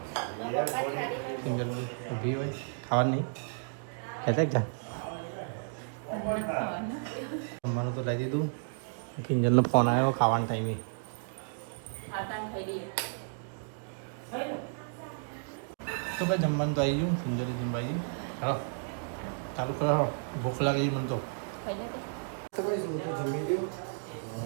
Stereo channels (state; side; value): silent; left; digital silence